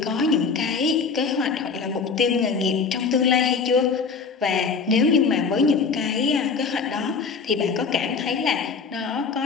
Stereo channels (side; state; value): right; quieter; 5.2 dB